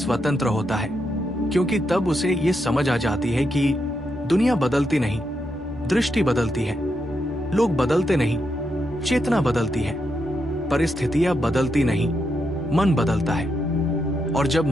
होता है, क्योंकि तब उसे ये समझ आ जाती है कि दुनिया बदलती नहीं, दृष्टि बदलती है। लोग बदलते नहीं, चेतना बदलती है। परिस्थितियां बदलती नहीं, मन बदलता है। और जब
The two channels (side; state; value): both; normal; correlation 0.82